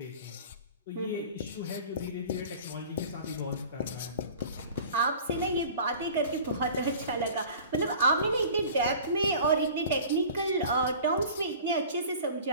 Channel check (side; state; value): both; inverted; correlation -0.43